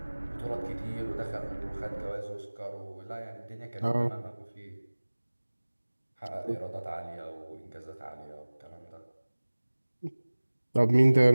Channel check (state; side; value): inverted; both; correlation -1.00